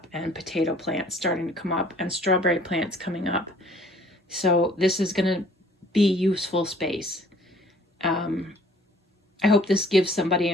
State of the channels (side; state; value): both; normal; correlation 0.55